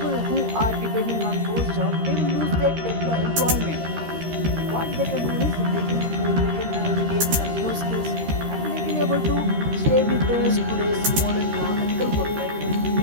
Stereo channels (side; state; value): left; late; 13 ms